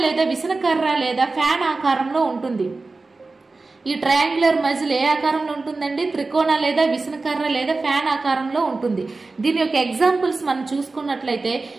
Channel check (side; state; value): left; quieter; 3.6 dB